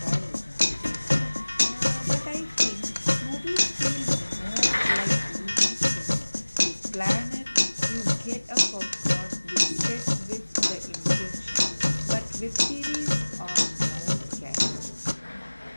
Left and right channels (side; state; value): both; inverted; correlation -1.00